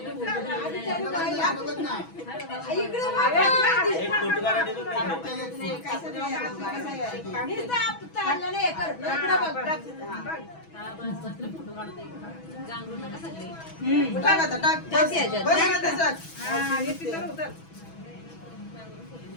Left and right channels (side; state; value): right; late; 6.1 ms